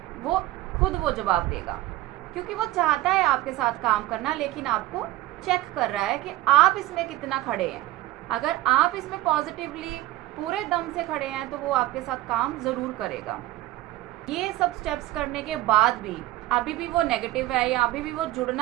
वो खुद वो जवाब देगा, क्योंकि वो चाहता है आपके साथ काम करना, लेकिन आपको चेक कर रहा है कि आप इसमें कितना खड़े हैं। अगर आप इसमें पॉजिटिवली पूरे दम से खड़े हैं तो वो आपके साथ काम ज़रूर करेगा। ये सब स्टेप्स करने के बाद भी अभी भी वो नेगेटिव है या अभी भी वो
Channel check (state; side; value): quieter; left; 16.3 dB